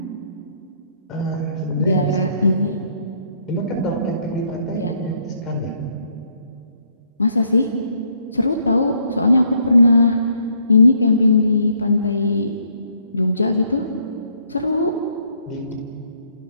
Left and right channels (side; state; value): both; inverted; correlation -0.68